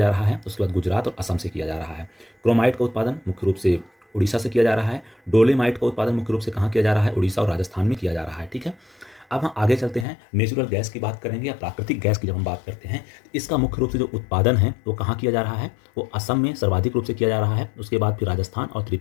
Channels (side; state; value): right; drops out; at 10.1 s